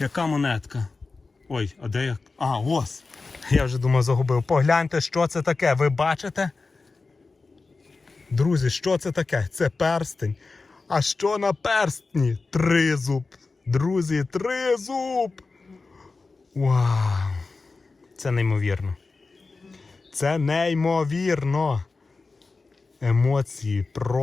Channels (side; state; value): right; quieter; 3.9 dB